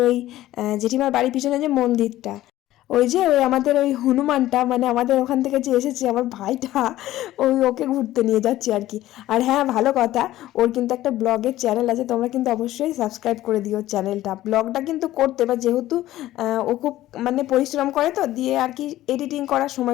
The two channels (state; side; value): quieter; right; 14.9 dB